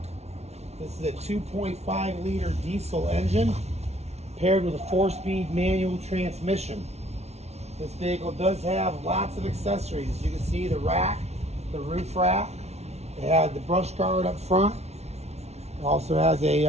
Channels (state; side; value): late; left; 0.31 ms